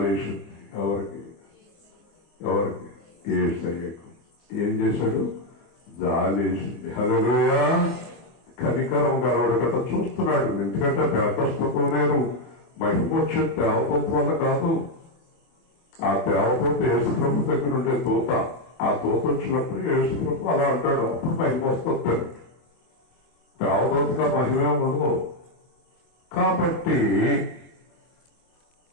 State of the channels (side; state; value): right; late; 25 ms